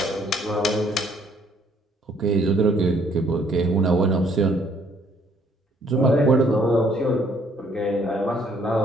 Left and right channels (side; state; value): both; normal; correlation 0.64